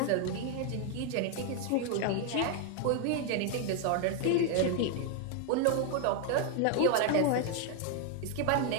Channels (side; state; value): both; different; correlation 0.01